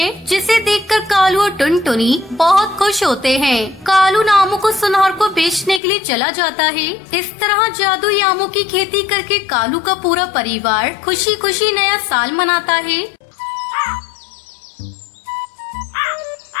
जिसे देखकर कालू और टुनटुनी बहुत खुश होते हैं। कालू आमों को सुनार को बेचने के लिए चला जाता है। इस तरह जादुई आमों की खेती करके कालू का पूरा परिवार खुशी खुशी नया साल मनाता है।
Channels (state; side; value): drops out; right; at 5.8 s